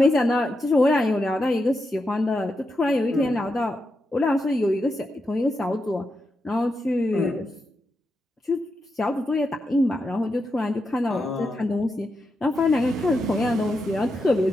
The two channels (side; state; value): both; normal; correlation 0.86